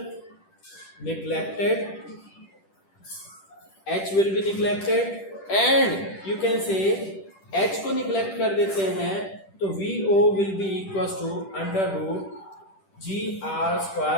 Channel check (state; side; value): late; right; 10 ms